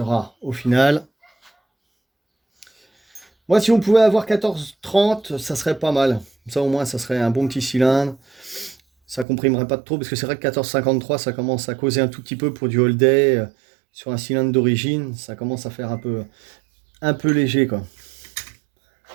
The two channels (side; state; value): left; drops out; at 9.2 s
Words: au final. Moi, si on pouvait avoir 14,30, ça serait pas mal. Ça, au moins, ça serait un bon petit cylindre. Ça comprimerait pas trop, parce que c'est vrai que 14,53, ça commence à causer un tout petit peu pour du all day. Sur un cylindre d'origine, ça commence à faire un peu léger, quoi.